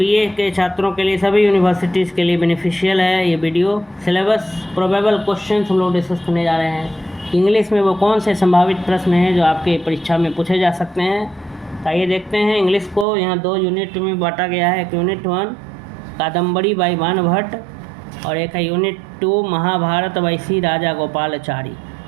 BA के छात्रों के लिए सभी यूनिवर्सिटीज़ के लिए बेनिफिशियल है। ये वीडियो सिलेबस प्रोबेबल क्वेश्चंस हम लोग डिस्कस करने जा रहे हैं। इंग्लिश में वो कौन से संभावित प्रश्न हैं जो आपके परीक्षा में पूछे जा सकते हैं। आइए देखते हैं। इंग्लिश को यहाँ 2 यूनिट में बांटा गया है। एक यूनिट 1 कादम्बरी बाई बाणभट्ट और एक है यूनिट 2 महाभारत बाई सी राजा गोपालाचारी।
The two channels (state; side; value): drops out; left; at 13.1 s